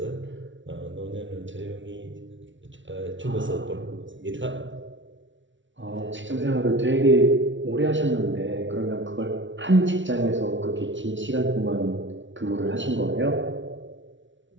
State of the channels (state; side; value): late; left; 0.55 ms